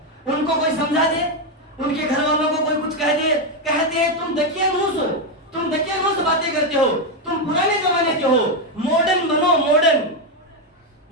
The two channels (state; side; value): normal; both; correlation 0.06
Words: ان کو کوئی سمجھا دے, ان کے گھر والوں کو کوئی کچھ کہہ دے, کہتے ہیں تم دقیانوس ہو, تم دقیانوس باتیں کرتے ہو, تم پرانے زمانے کے ہو, ماڈرن بنو, ماڈرن